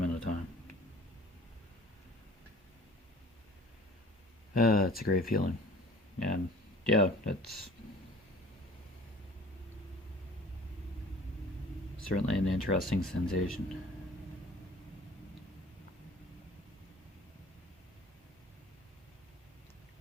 of time. It's a great feeling. And yeah, it's certainly an interesting sensation.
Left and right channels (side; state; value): both; normal; correlation 0.47